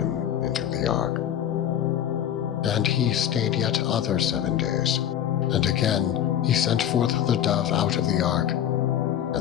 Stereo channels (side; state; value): right; quieter; 10.4 dB